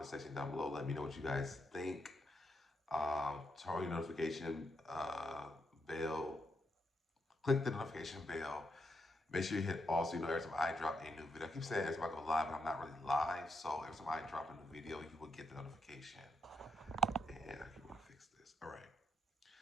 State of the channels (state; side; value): normal; both; correlation 0.81